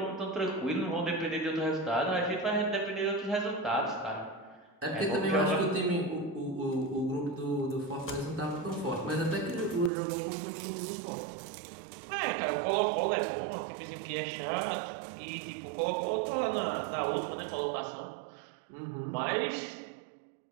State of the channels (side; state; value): left; drops out; at 9.9 s